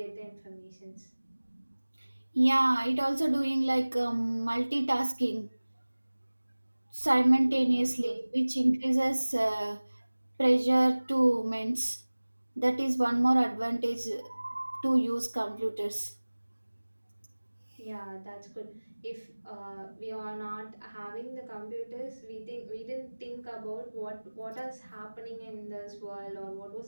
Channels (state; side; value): inverted; both; correlation -1.00